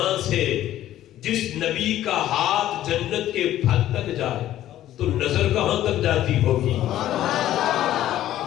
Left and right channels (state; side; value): quieter; right; 13.0 dB